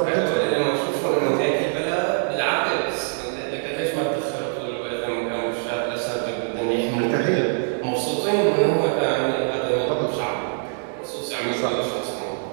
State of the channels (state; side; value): silent; left; digital silence